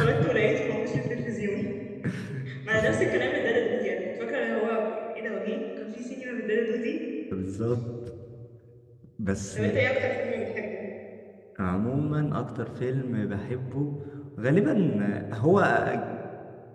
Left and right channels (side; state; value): both; identical; correlation 1.00